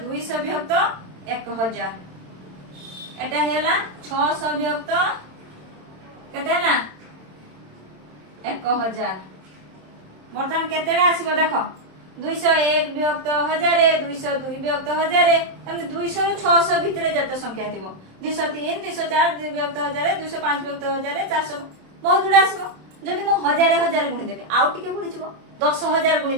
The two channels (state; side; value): late; left; 27 ms